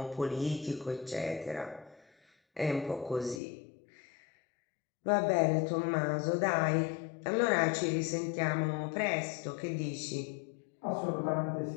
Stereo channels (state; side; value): drops out; right; at 3.4 s